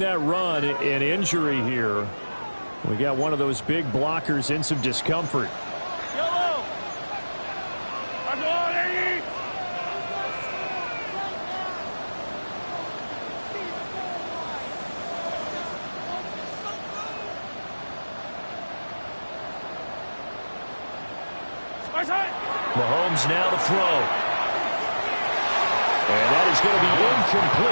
that run, an injury here. We got one of those big blockers in some discomfort. Yellow. Mahomes now to throw. And that is going to be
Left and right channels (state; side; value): inverted; both; correlation -1.00